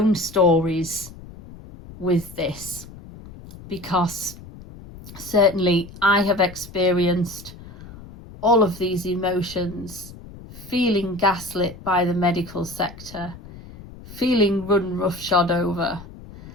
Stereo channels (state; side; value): noise; left; rumble, 17 dB below the sound